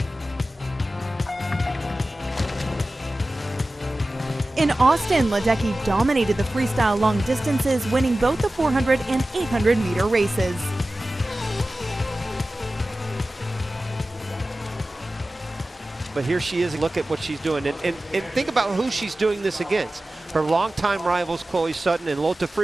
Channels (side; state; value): both; normal; correlation 0.96